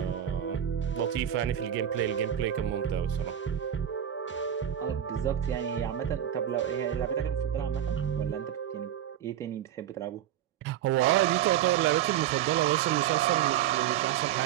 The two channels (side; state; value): left; quieter; 10.6 dB